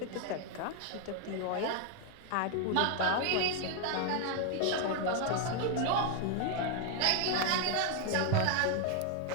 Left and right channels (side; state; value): both; different; correlation 0.01